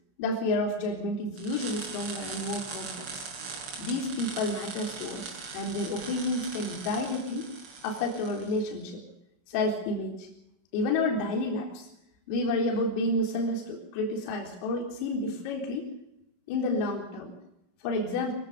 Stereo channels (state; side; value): late; left; 5.4 ms